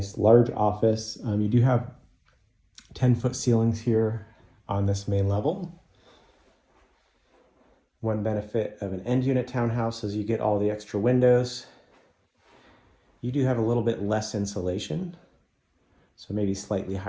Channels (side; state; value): both; identical; correlation 1.00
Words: large office. You do have 10-foot ceilings here on this main level. One benefit of an end unit townhouse is you get all the extra windows. You do have a little bit less insulation, so maybe slightly